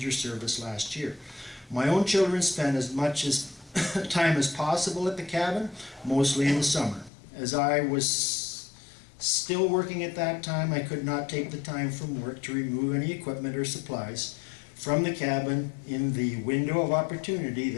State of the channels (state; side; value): drops out; right; at 7.1 s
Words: service last year. My own children spent as much time as possible at the cabin, mostly in the summer. As I was still working at that time, I could not take the time from work to remove any equipment or supplies from the cabin in the window of opportunity